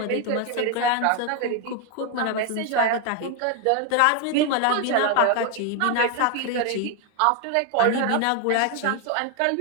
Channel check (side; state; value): both; different; correlation 0.01